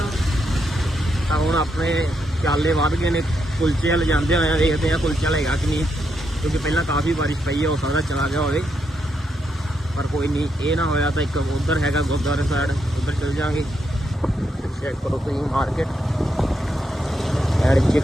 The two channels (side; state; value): both; normal; correlation 0.81